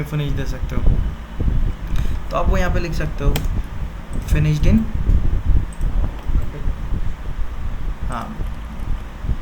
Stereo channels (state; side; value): identical; both; correlation 1.00